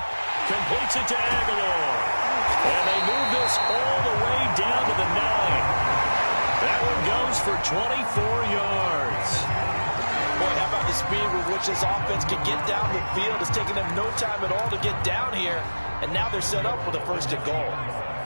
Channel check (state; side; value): inverted; both; correlation -1.00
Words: Completes it to Aguilar. And they move this all the way down to the 9. That one goes for 24 yards. Boy, how about the speed with which this offense can get down the field? It's taking them no time at all to get down here. And now they're set up with a 1st and goal.